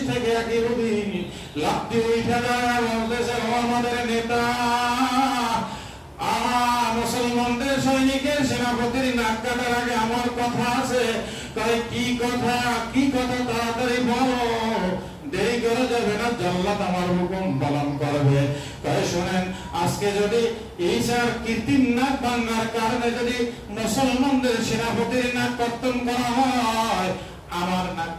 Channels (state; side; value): identical; both; correlation 1.00